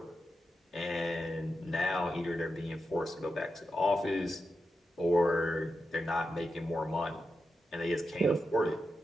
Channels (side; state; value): both; normal; correlation 0.88